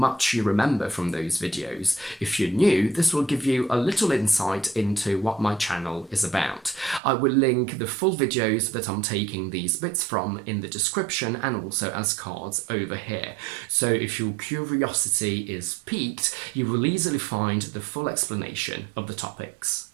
you remember from those videos. If you're new, this will give you a little insight into what my channel is about. I will link the full videos that I'm taking these bits from in the description and also as cards over here. So if your curiosity is piqued, you will easily find the full explanation of the topics.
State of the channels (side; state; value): left; drops out; at 7.0 s